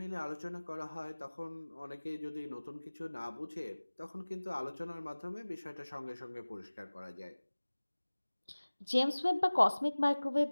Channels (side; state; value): both; inverted; correlation -1.00